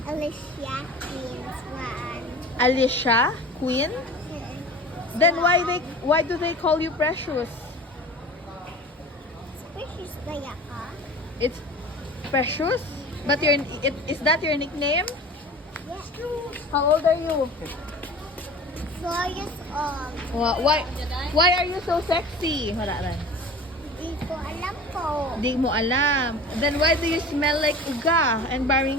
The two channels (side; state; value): both; normal; correlation 0.39